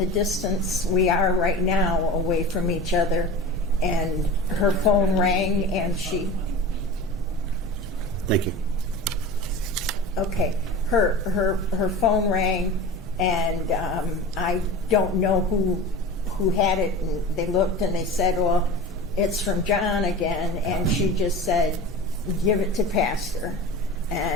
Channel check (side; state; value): both; normal; correlation 0.33